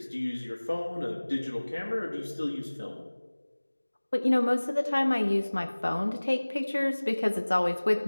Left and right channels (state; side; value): inverted; both; correlation -1.00